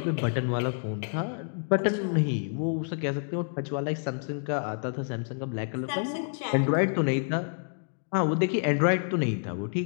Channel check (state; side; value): silent; right; 59 dB below the other